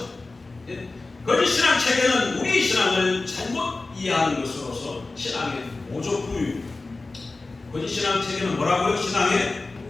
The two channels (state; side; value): quieter; right; 3.5 dB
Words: 거짓 신앙 체계는 우리 신앙을 잘못 이해하는 것으로서 신앙의 모조품입니다. 거짓 신앙 체계는 뭐라고요? 신앙의